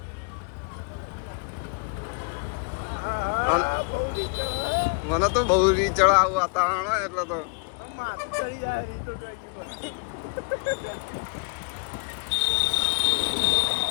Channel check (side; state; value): right; quieter; 38.3 dB